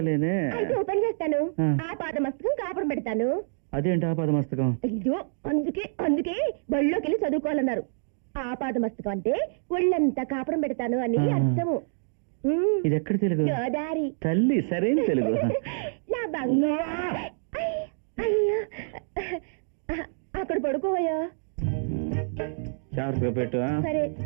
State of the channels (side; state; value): left; silent; digital silence